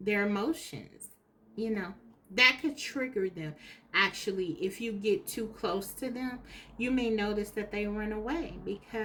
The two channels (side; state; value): both; identical; correlation 1.00